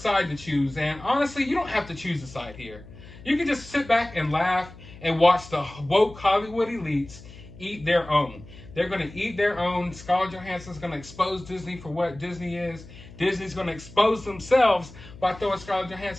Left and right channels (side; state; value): left; noise; hum, 18 dB below the sound